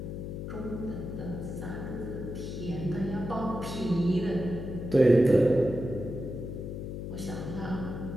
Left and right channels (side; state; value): left; noise; hum, 6 dB below the sound